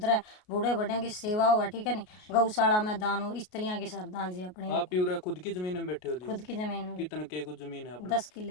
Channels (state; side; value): late; right; 33 ms